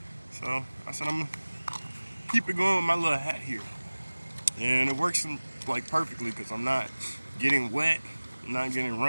So I said I'm gonna keep it going with my little hat here. And it works like perfectly because I'm not getting wet, I'm not getting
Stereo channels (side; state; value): both; inverted; correlation -1.00